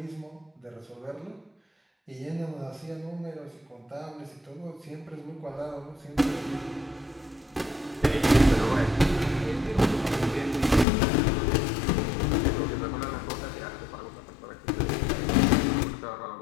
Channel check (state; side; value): drops out; right; at 10.9 s